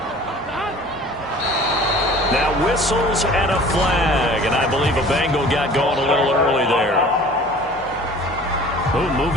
Now whistles and a flag, and I believe a Bengal got going a little early there. Oh,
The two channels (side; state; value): both; normal; correlation 0.46